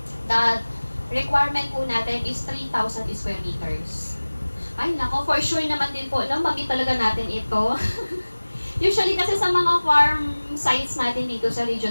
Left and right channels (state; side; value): inverted; both; correlation -1.00